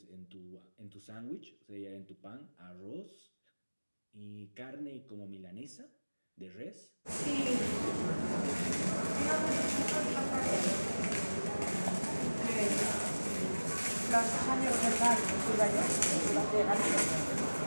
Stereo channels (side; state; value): both; inverted; correlation -1.00